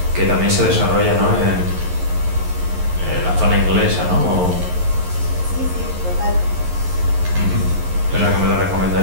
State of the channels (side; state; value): left; late; 11 ms